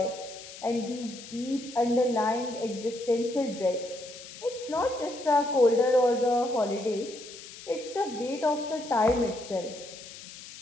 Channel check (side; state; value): left; noise; hiss, 15 dB below the sound